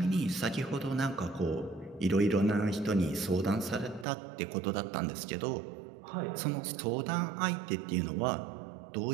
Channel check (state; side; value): drops out; left; at 4.0 s